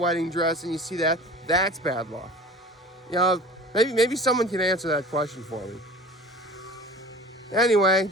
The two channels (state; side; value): normal; both; correlation 0.41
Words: dress and you see that, that's bad luck. You know, maybe someone can answer that question for me. Anyway,